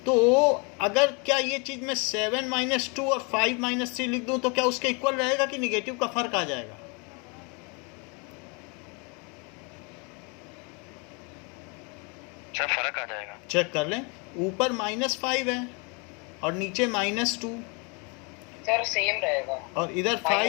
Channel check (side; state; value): right; quieter; 32.5 dB